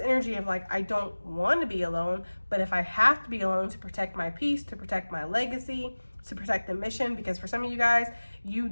of like, I don't want to be alone, but if I have to be alone to protect my peace, to protect my legacy, to protect the mission, because for some of you guys, you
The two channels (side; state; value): both; inverted; correlation -1.00